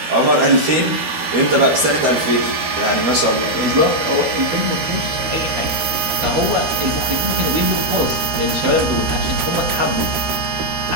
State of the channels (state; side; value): late; left; 13 ms